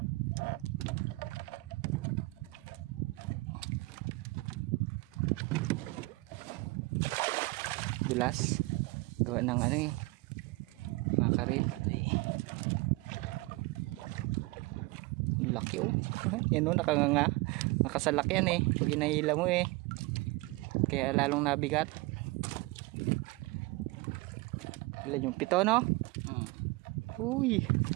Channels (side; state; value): left; quieter; 23.4 dB